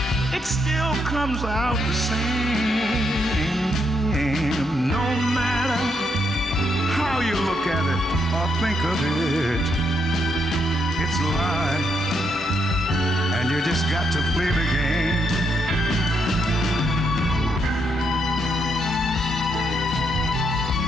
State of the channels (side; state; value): both; normal; correlation 0.77